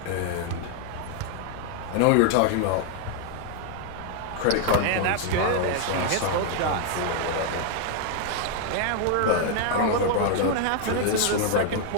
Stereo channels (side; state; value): both; different; correlation 0.00